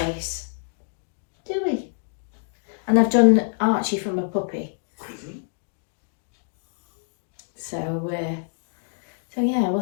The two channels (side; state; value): right; silent; digital silence